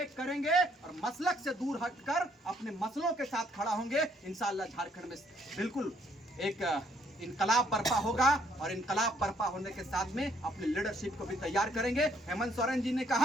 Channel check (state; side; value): normal; both; correlation 0.67